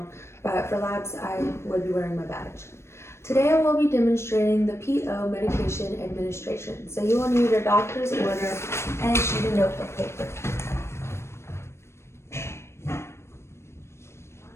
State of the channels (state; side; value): late; right; 0.13 ms